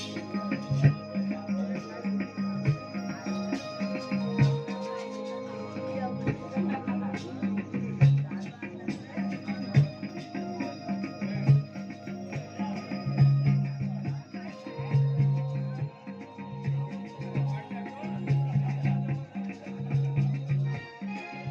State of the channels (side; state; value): both; identical; correlation 1.00